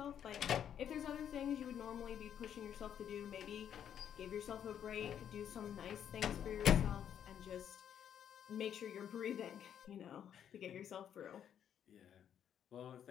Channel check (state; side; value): quieter; right; 9.3 dB